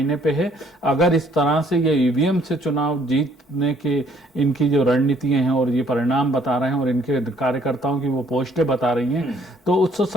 पे है। अगर इस तरह से ये ईवीएम से चुनाव जीतने की इनकी जो रणनीतियां हैं और ये परिणाम बता रहे हैं और इनके कार्यकर्ताओं की वो पोस्टें बता रही हैं, तो उससे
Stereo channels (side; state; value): both; normal; correlation 0.63